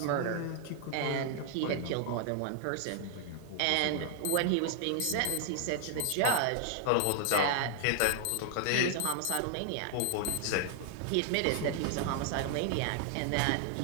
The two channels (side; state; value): both; different; correlation 0.00